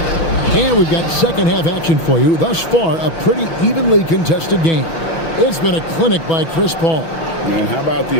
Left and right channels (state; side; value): late; right; 6.1 ms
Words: And we've got second half action for you. Thus far, a pretty evenly contested game. It's been a clinic by Chris Paul. And how about